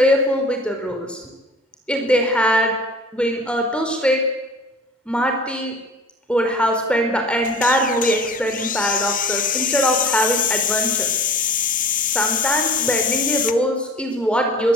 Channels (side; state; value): both; normal; correlation 0.43